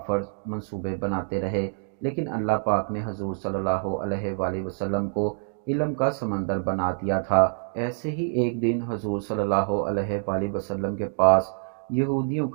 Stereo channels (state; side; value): silent; left; digital silence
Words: منصوبے بناتے رہے، لیکن اللہ پاک نے حضور صلی اللہ علیہ وآلہ وسلم کو علم کا سمندر بنا دیا تھا۔ ایسے ہی ایک دن حضور صلی اللہ علیہ وآلہ وسلم کے پاس یہودیوں